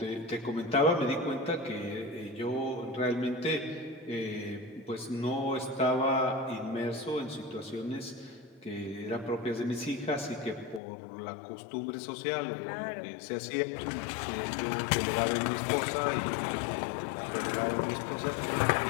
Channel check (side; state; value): right; drops out; at 10.8 s